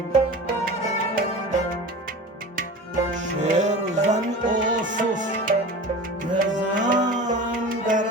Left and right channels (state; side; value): normal; both; correlation 0.34